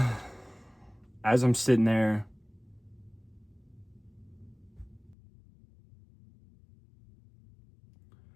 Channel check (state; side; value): drops out; right; at 5.2 s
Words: as I'm sitting there.